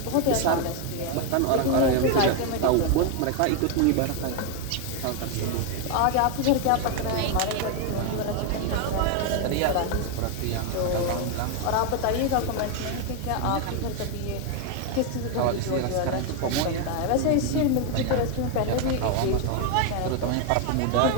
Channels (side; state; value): both; different; correlation 0.01